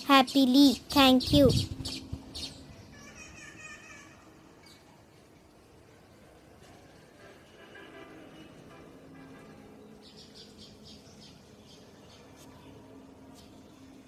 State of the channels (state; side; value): identical; both; correlation 1.00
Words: happily. Thank you.